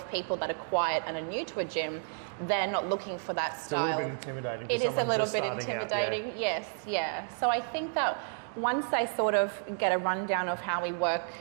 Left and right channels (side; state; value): left; silent; digital silence